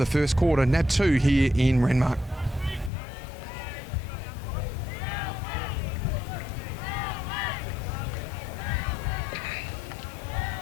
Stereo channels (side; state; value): right; drops out; at 2.9 s